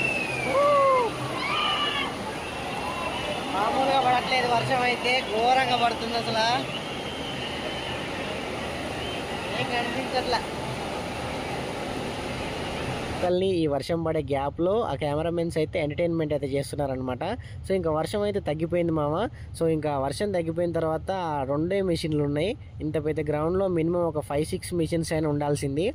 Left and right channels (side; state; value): both; identical; correlation 1.00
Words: మామూలుగా పడట్లేదు వర్షం, అయితే ఘోరంగా పడుతుంది అసలు, ఏం కనిపించట్లా. ఈ వర్షం పడే గ్యాప్లో ఆ కెమెరామెన్స్ అయితే ఎంటర్టైన్మెంట్ అయితే చేస్తున్నారనమాట. సో ఇంకా వర్షం అయితే తగ్గిపోయింది మామ. సో ఇంకా వర్షం తగ్గిపోయిన తర్వాత రెండే మిషన్లు ఉన్నాయి. ఇంత పెద్ద గ్రౌండ్లో మినిమం ఒక 5-6 మిషన్స్ అయినా ఉండాల్సింది,